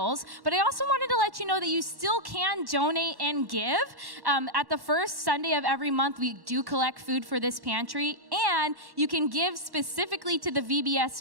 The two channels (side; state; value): left; late; 1.1 ms